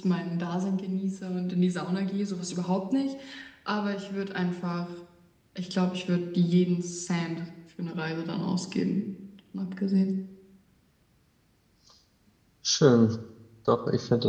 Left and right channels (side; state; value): both; identical; correlation 1.00